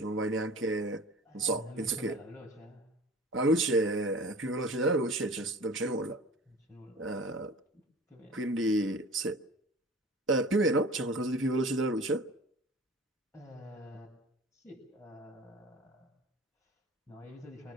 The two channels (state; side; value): normal; both; correlation 0.40